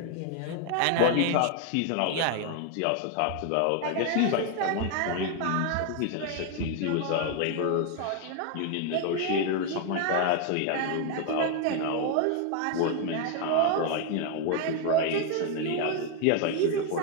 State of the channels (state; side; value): different; both; correlation 0.01